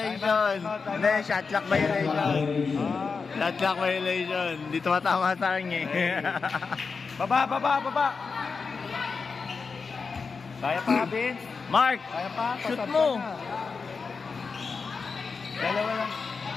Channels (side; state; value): right; quieter; 4.9 dB